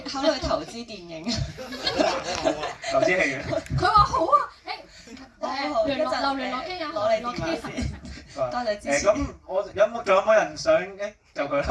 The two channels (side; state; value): both; identical; correlation 1.00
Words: 考慮投資電影？投資戲院。佢話好啊，聯絡機啊，攞你電話先。多謝支持。咁我仲有冇人想就佢